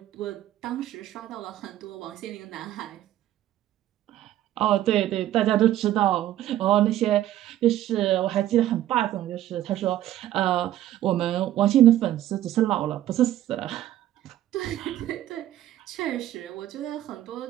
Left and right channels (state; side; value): quieter; left; 13.1 dB